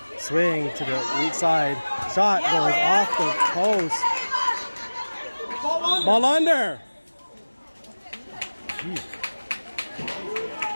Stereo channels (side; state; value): both; inverted; correlation -1.00